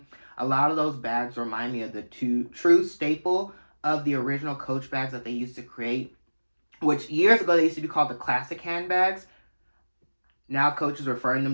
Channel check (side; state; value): both; inverted; correlation -1.00